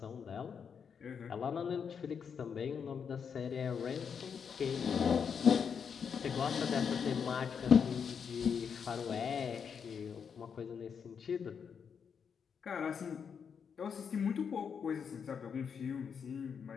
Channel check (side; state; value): right; quieter; 6.8 dB